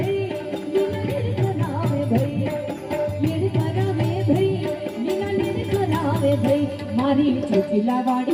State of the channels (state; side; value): identical; both; correlation 1.00